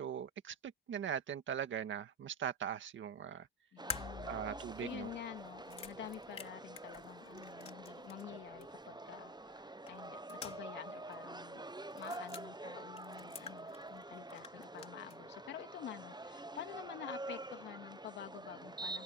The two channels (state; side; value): normal; both; correlation 0.16